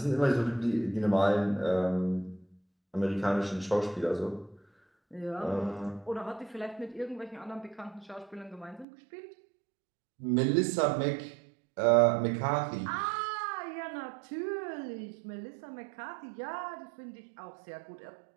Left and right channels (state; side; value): drops out; left; at 8.8 s